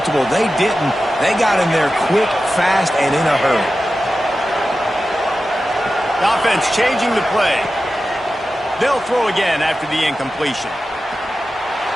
They didn't. They got in there quick, fast, and in a hurry. The offense changing the play. They'll throw again after the incompletion.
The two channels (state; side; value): normal; both; correlation 0.93